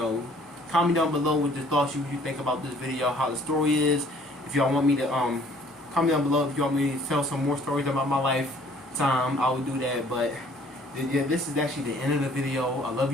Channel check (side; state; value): both; normal; correlation 0.57